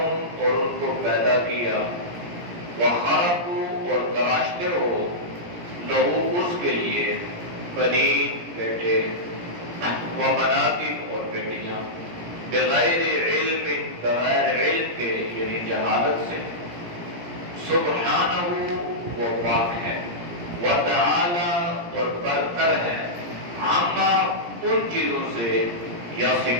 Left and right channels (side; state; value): left; late; 17 ms